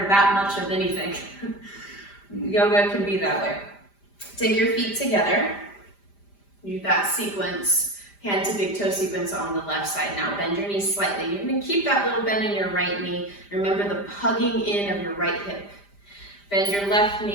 of anything. Yoga can be that way. Take your feet together. Do that sequence, hand to big toe sequence on the left side. Now bend your knees slightly. You're going to keep that little bend in your right knee. Remember the hugging in of your right hip. Bend your left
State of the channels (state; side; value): late; right; 5.0 ms